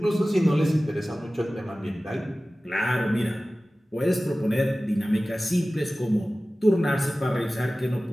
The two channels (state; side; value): normal; both; correlation 0.97